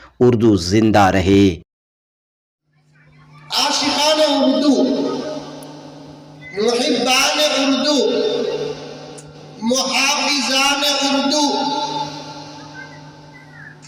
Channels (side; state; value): both; identical; correlation 1.00